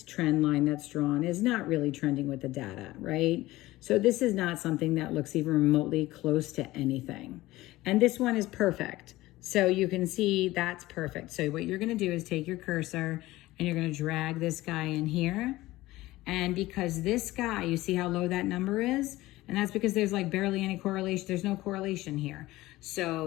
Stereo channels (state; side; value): quieter; right; 17.8 dB